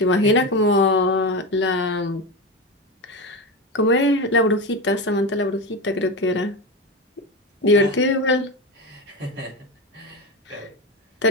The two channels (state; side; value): normal; both; correlation 0.18